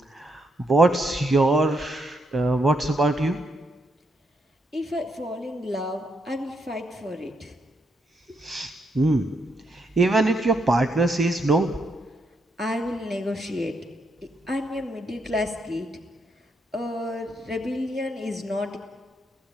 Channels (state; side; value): normal; both; correlation 0.78